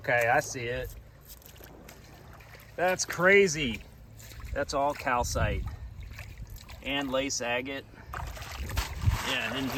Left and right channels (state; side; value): identical; both; correlation 1.00